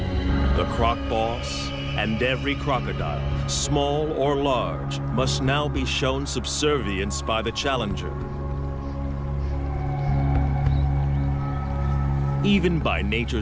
The croc boss and every crocodile, small or large, must now be shown subservience by the challenger. Even by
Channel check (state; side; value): identical; both; correlation 1.00